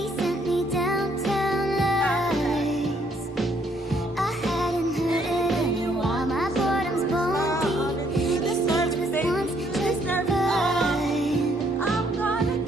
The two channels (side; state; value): both; normal; correlation 0.68